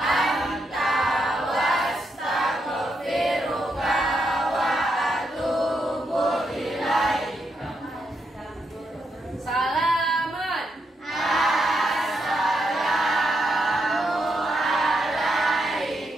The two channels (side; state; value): both; normal; correlation 0.81